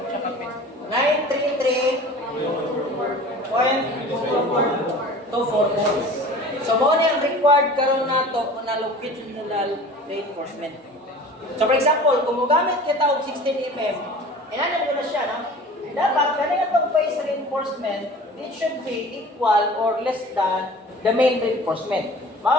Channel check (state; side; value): normal; both; correlation 0.42